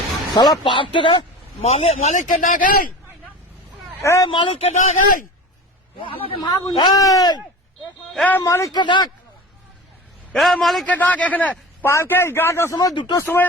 সালা পার্ক থেকে মালিককে ডাক, মালিককে ডাক, মালিককে ডাক, মালিককে ডাক। এখানে পার্কে 11টার সময় 2টোর সময়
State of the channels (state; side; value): normal; both; correlation 0.34